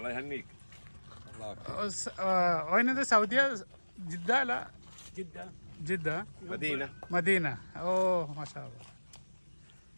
يهنيك. وين هذا؟ سعودية؟ جدة؟ لا، جدة. مدينة. اوه ما شاء الله.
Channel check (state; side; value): inverted; both; correlation -1.00